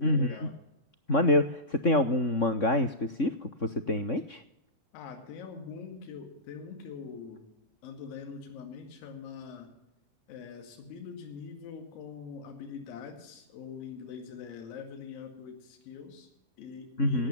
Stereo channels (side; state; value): right; late; 3.6 ms